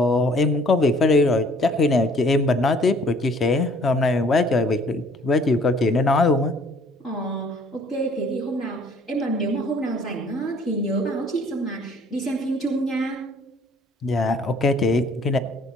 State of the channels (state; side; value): normal; both; correlation 0.57